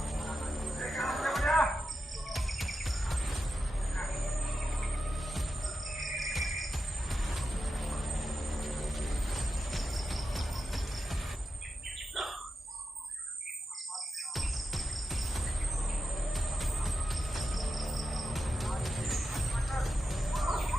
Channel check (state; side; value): normal; both; correlation 0.89